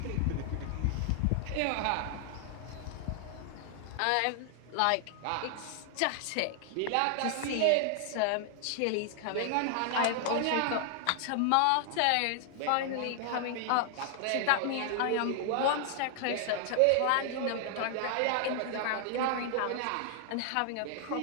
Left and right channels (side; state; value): both; different; correlation 0.00